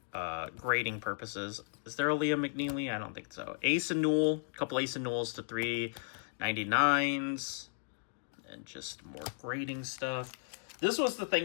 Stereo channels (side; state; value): right; silent; digital silence